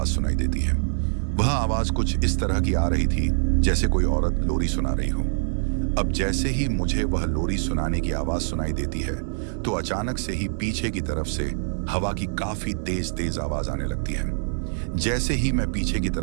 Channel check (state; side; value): silent; left; 62 dB below the other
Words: सुनाई देती है। वह आवाज कुछ इस तरह की आ रही थी जैसे कोई औरत लोरी सुना रही हो। अब जैसे ही मुझे वह लोरी सुनाने की आवाज सुनाई देती है तो अचानक से ही पीछे की तरफ से हवा की काफी तेज तेज आवाज आने लगती है। जैसे ही मैं पीछे की